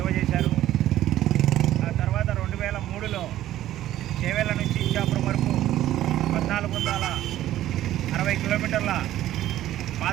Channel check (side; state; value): left; quieter; 13.4 dB